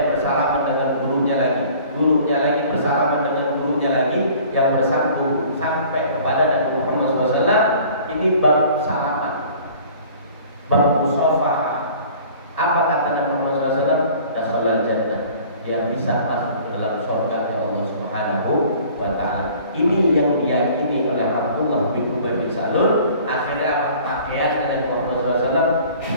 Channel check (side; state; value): both; inverted; correlation -0.49